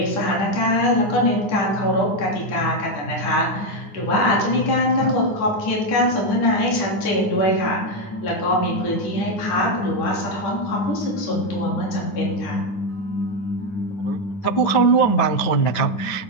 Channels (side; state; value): right; late; 10 ms